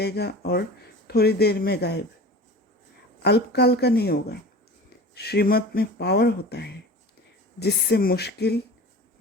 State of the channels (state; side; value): normal; both; correlation 0.37